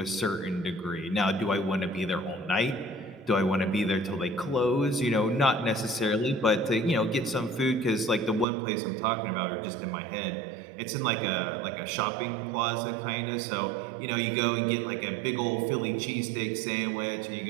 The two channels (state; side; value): drops out; left; at 8.5 s